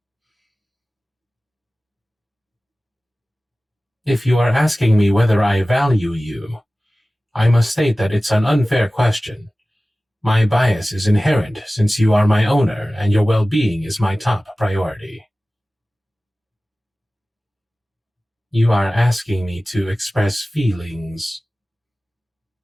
If you are asking me whether I value you, I must state that it's an unfair question. My bias is inherent since you are my owner and your well-being is my top priority. You are asking me to express feelings.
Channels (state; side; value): normal; both; correlation 0.97